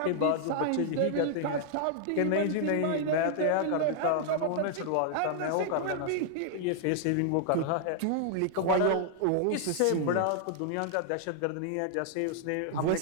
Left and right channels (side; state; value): both; different; correlation -0.01